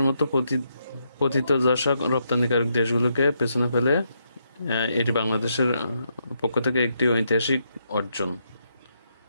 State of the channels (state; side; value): inverted; both; correlation -0.79